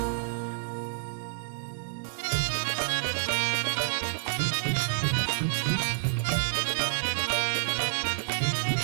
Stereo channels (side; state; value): left; silent; digital silence